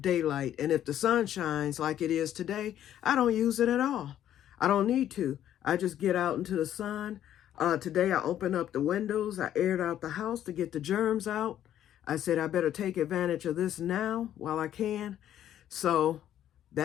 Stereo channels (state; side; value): quieter; right; 11.2 dB